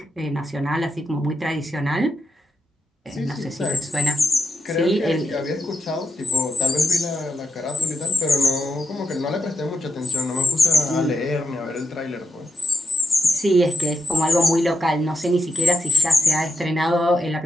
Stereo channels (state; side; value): normal; both; correlation 0.82